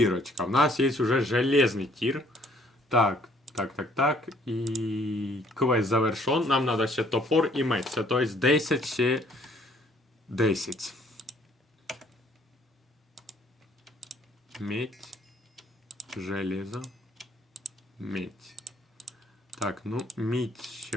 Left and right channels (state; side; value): normal; both; correlation 0.62